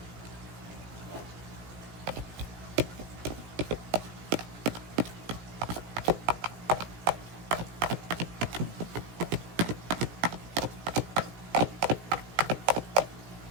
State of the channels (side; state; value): left; late; 17 ms